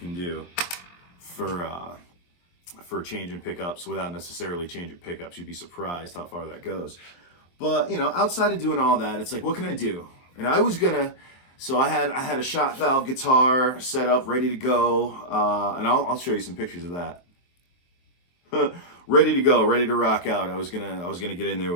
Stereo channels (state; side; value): late; right; 23 ms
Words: do for changing pickups without necessarily changing pickups. You'd be surprised how far that goes. But outside of doing all that, it's like, what can I do? And I was gonna. So I had a shot valve guitar set up, ready to go, and I'll show you some pictures of that. Ready to go, ready to rock out. I was gonna get in there